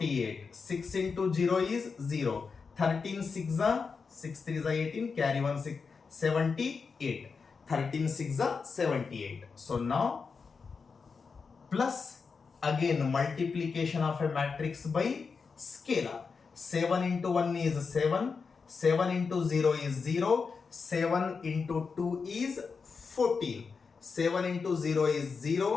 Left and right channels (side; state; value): right; quieter; 5.1 dB